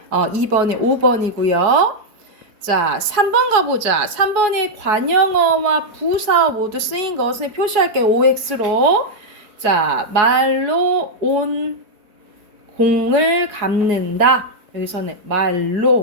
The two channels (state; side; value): late; left; 4.7 ms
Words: 2번에 5번이고요. 자, 3번 가보자. 3번에 관영어와 부사어 모두 쓰인 것을 표시할게요. OX로. 자, 말로 온 공을 갚는다. 여기서는